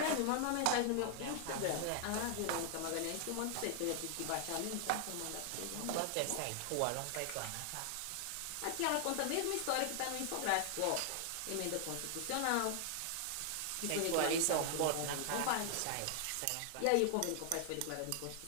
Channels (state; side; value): different; both; correlation 0.00